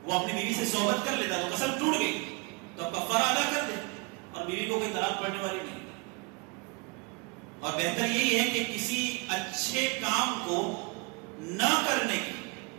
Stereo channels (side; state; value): left; quieter; 29.3 dB